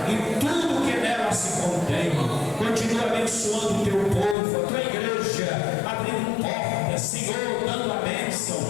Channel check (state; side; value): drops out; right; at 4.4 s